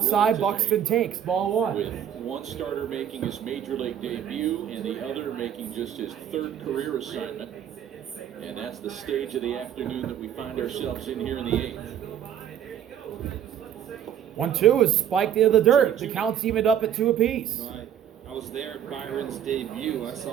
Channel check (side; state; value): left; quieter; 9.7 dB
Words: Buxton takes ball one. With one starter making his major league debut and the other making just his third career assignment. And that's the stage of the afternoon that we find ourselves in here in the 8th. 1-2 is spiked into the dirt. The count's evened up at 2 apiece. I was there at Byron's debut. I